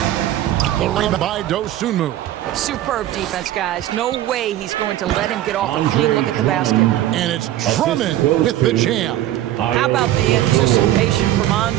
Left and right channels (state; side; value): quieter; left; 13.6 dB